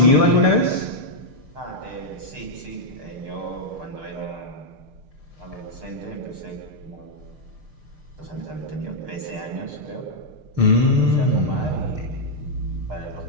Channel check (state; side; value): late; left; 6.6 ms